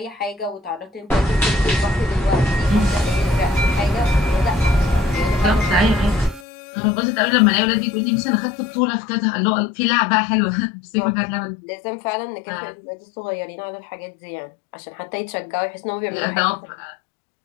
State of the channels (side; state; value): right; drops out; at 6.5 s